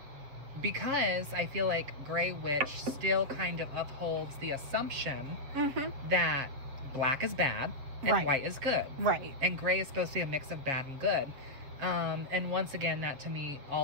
Because I feel like gray witch still kind of upholds the assumption that black is bad and white is good. Right. And gray is supposed to be a mix of bad and good. And once again, that to me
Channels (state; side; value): late; left; 7.5 ms